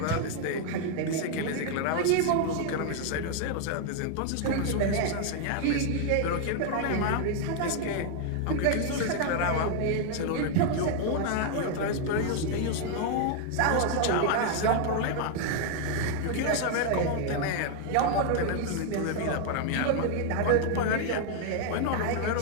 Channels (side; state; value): both; different; correlation 0.00